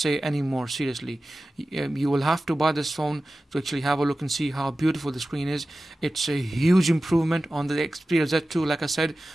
any more, seriously. You will have to buy this phone to actually have a look and see how beautiful the screen is. It's a huge improvement on the Xperia Z2. Like I said,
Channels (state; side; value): normal; both; correlation 0.95